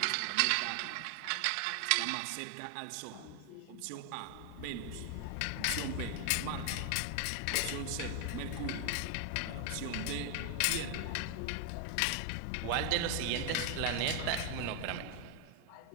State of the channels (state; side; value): different; both; correlation 0.00